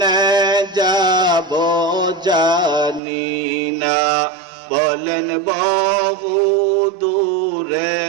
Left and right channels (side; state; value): left; drops out; at 3.0 s